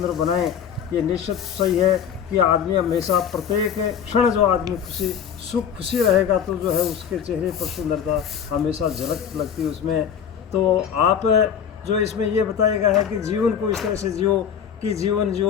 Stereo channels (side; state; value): right; quieter; 8.1 dB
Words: बनाए। ये निश्चित सही है कि आदमी हमेशा प्रत्येक क्षण जो आदमी खुशी रहेगा तो जो है उसके चेहरे पर सुंदरता हमेशा झलक लगती है उसमें। तो आप जो इसमें ये बताया गया है कि जीवन को इस तरह से जियो कि जीवन